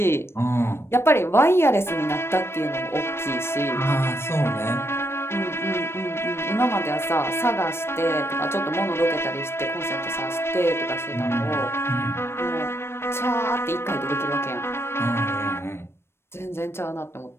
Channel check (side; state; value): right; late; 0.12 ms